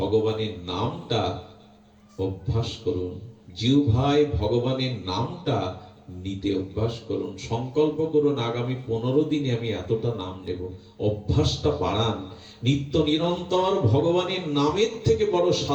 নামটা অভ্যাস করুন। জিহ্বায় ভগবানের নামটা নিতে অভ্যাস করুন। সংকল্প করুন, আগামী 15 দিনে আমি এতটা নাম নেব। অভ্যাসটা বাড়ান। নিত্য নিরন্তর ভগবানের নামের থেকে বড়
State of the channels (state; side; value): identical; both; correlation 1.00